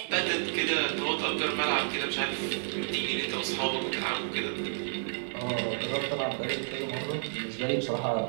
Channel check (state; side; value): silent; left; digital silence